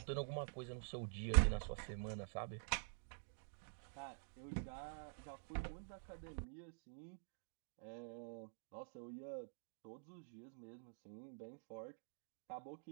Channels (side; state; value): left; silent; digital silence